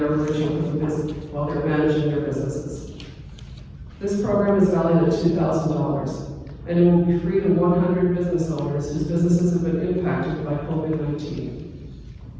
emerging from the business, while they're managing their businesses. This program is valued at $2,000, and it will be free to 100 business owners whose businesses have been impacted by COVID-19.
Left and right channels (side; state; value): both; identical; correlation 1.00